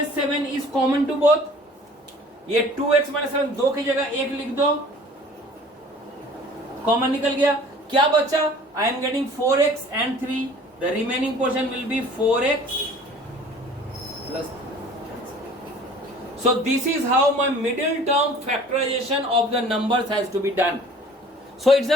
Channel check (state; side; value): normal; both; correlation 0.49